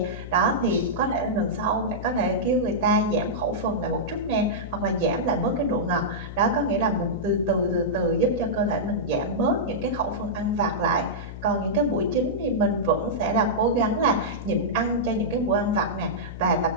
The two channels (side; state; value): left; noise; hum, 11 dB below the sound